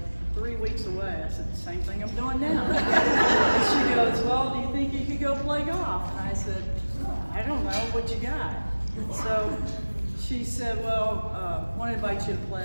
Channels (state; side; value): inverted; both; correlation -1.00